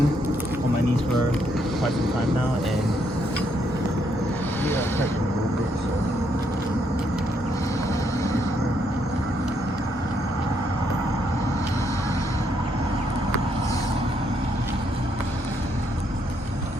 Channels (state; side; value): normal; both; correlation 0.74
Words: on my knees for quite some time now, and yeah, I'm hurting a little bit, so.